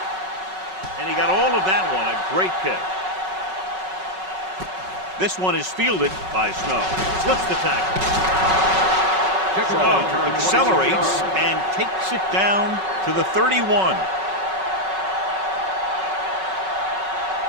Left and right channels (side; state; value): left; late; 5.3 ms